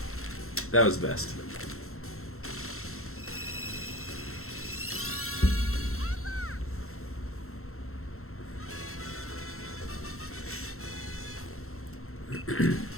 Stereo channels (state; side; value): late; right; 0.62 ms